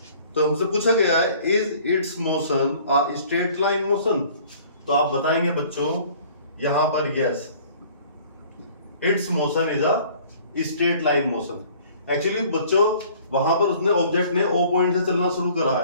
तो हमसे पूछा गया है is it's motion a straight line motion. तो आप बताएंगे बच्चों यहां पर yes, it's motion is a straight line motion. Actually बच्चों वहां पर उसने ऑब्जेक्ट ने O पॉइंट से चलना शुरू करा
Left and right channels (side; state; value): both; inverted; correlation -0.52